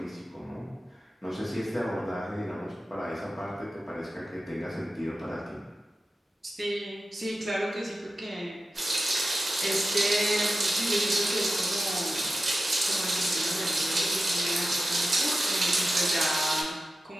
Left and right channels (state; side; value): normal; both; correlation 0.93